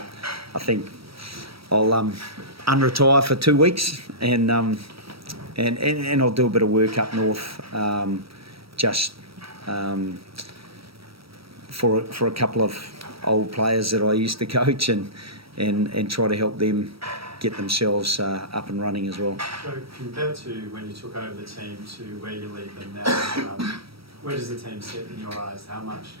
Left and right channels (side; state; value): left; late; 0.76 ms